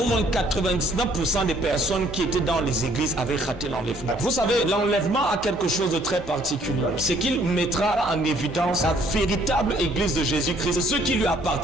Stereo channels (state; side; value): normal; both; correlation 0.62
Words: Au moins 99% des personnes qui étaient dans les églises avaient raté l'enlèvement. Vous savez, l'enlèvement a quelque chose de très particulier. C'est qu'il mettra en évidence la véritable église de Jésus-Christ, ceux qui lui